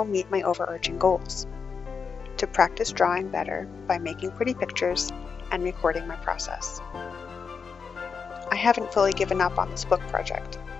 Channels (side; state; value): right; quieter; 5.7 dB